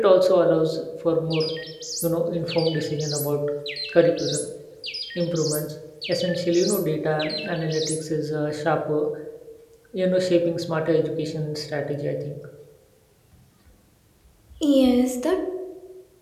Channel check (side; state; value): both; identical; correlation 1.00